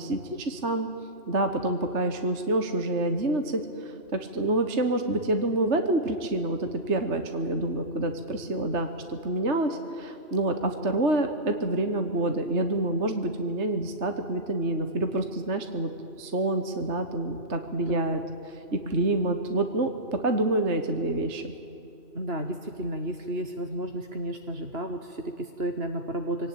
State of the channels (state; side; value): late; left; 3.3 ms